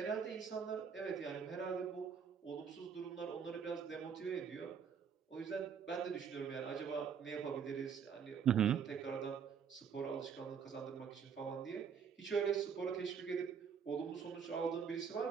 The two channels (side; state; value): left; quieter; 6.9 dB